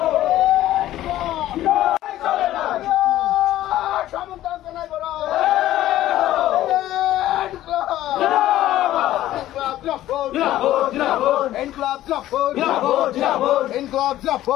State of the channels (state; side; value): quieter; right; 14.0 dB